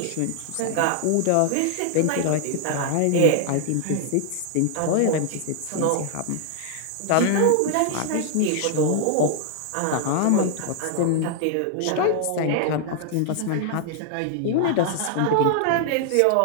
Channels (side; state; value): both; different; correlation 0.00